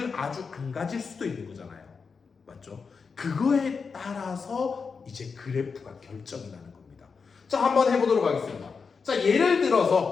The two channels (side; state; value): right; quieter; 5.3 dB